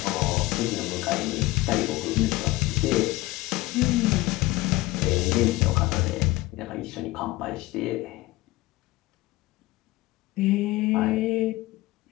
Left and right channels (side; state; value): right; quieter; 18.9 dB